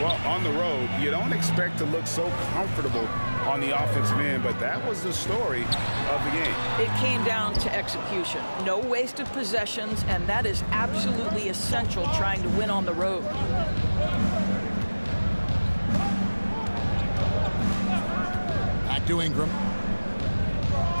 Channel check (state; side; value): inverted; both; correlation -1.00